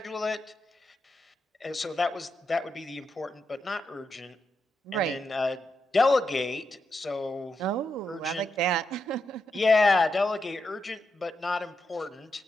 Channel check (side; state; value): both; normal; correlation 0.84